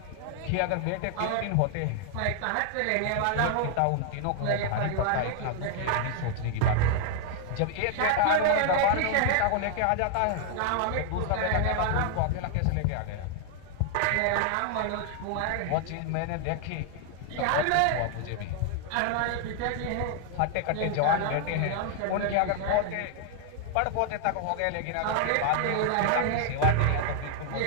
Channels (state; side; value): different; both; correlation 0.00